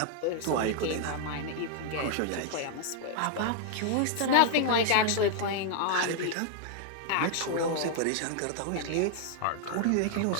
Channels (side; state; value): both; different; correlation 0.00